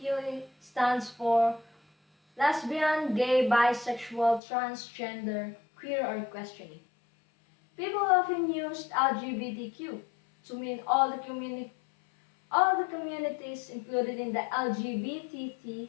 stands for lesbian, gay, bisexual, transgender, queer, or questioning. People often use LGBTQ to mean all the communities included in the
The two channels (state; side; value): drops out; right; at 4.4 s